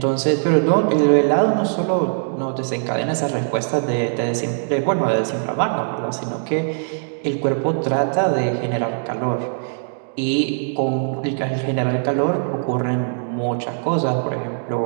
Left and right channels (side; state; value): left; silent; digital silence